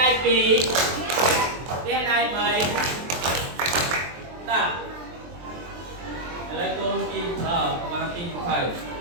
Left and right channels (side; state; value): left; late; 23 ms